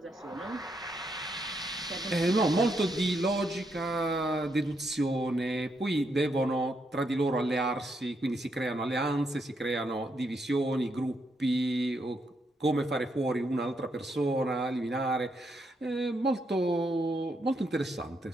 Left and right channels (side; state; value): both; normal; correlation 0.78